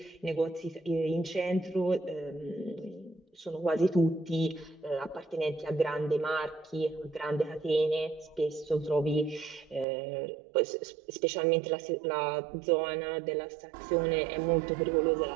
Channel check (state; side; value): drops out; left; at 9.9 s